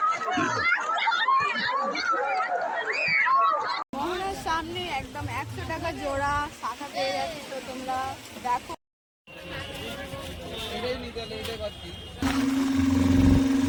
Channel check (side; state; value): both; identical; correlation 1.00